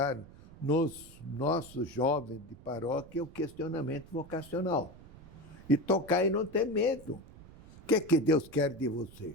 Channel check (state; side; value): noise; right; rumble, 20 dB below the sound